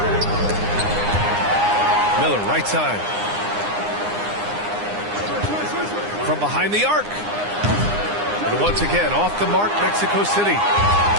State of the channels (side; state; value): left; late; 9.8 ms